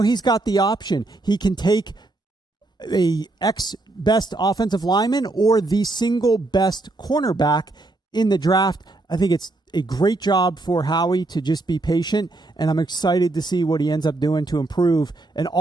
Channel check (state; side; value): quieter; left; 3.0 dB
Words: he's got the option. He can take a ex-best offensive lineman or the single best cornerback in the draft. I think it's a great job for Howie to just be patient, and I'm excited to see what he ends up doing to improve an